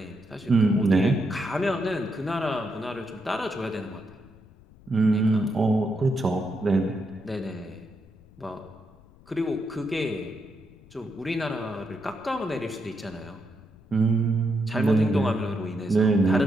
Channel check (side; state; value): left; noise; rumble, 25 dB below the sound